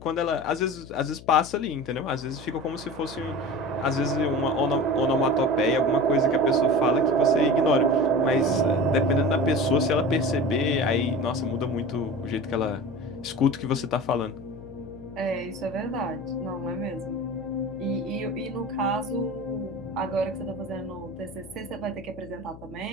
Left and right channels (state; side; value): noise; left; hum, 17 dB below the sound